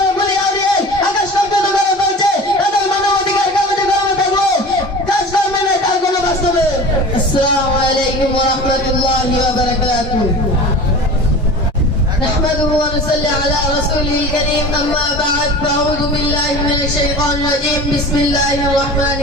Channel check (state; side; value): normal; both; correlation 0.37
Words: বলি আউরিয়ে আকাশ পর্যন্ত করে বলছে তাদের মানবাধিকার কাগজে কলমে থাকবো, কাজ করবে না তার কোনো বাস্তবে। আসসালামু আলাইকুম ওয়া রাহমাতুল্লাহি ওয়া বারাকাতুহু। نحمده ونصلي على رسوله الكريم أما بعد فأعوذ بالله من الشيطان الرجيم بسم الله الرحمن